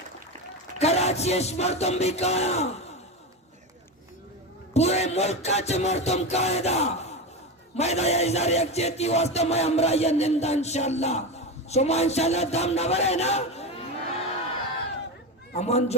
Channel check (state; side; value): normal; both; correlation 0.19